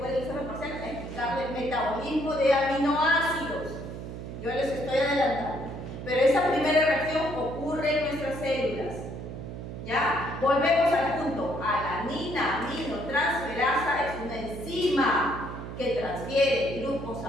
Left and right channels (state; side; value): noise; right; hum, 9 dB below the sound